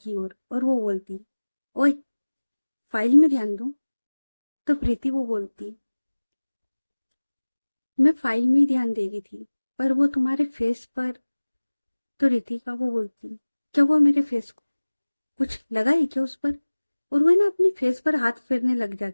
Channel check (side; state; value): both; inverted; correlation -1.00